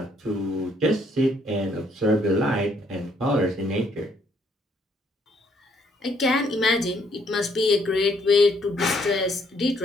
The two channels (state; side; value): normal; both; correlation 0.68